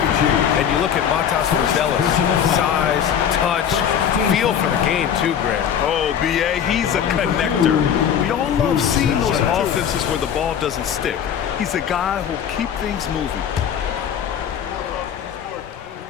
And you look at Matas Buzelis. Size, touch, feel for the game too, Grant. Oh, B.A., he's a connector. We all love seeing those offenses where the ball doesn't stick. He's a guy who'll keep things moving.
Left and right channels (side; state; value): right; quieter; 8.6 dB